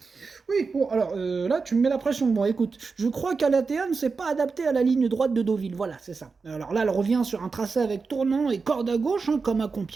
Oui, bon, alors là, tu me mets la pression. Bon, écoute, je crois qu'Alatea ne s'est pas adaptée à la ligne droite de Deauville. Voilà, c'est ça. Alors là, elle revient sur un tracé avec tournant et corde à gauche, comme à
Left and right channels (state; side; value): quieter; left; 4.6 dB